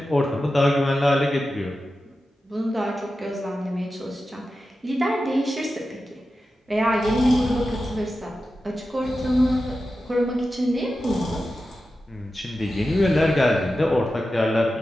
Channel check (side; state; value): both; normal; correlation 0.92